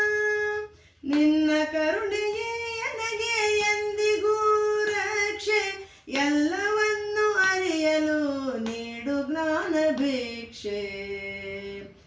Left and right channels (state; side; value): identical; both; correlation 1.00